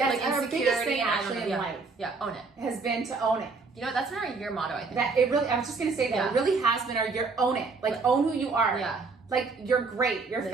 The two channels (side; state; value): left; quieter; 4.3 dB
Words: like and our insecurity biggest thing and actually in yeah. life. Yeah, own it. Has been to own it. You know, that's been our year motto, I think. That it really, I was just gonna say that Yeah. it really has been our year, own it. Like own who you are. Yeah. Like, you're great. You're